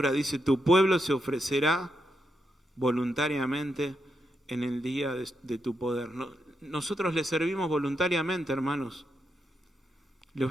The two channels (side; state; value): both; normal; correlation 0.83